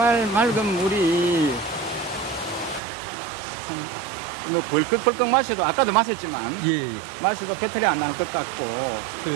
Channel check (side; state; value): left; drops out; at 2.8 s